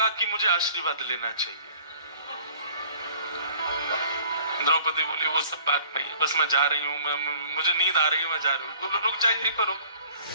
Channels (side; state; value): both; inverted; correlation -0.52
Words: कि मुझे आशीर्वाद लेना चाहिए? द्रौपदी बोली, वो सब बात नहीं, बस मैं जा रही हूँ, मुझे नींद आ रही है, मैं जा रही हूँ। रुक जा, यहीं पर रुक।